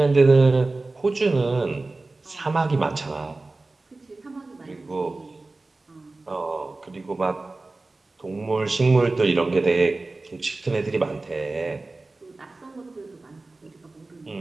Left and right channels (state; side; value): quieter; left; 3.3 dB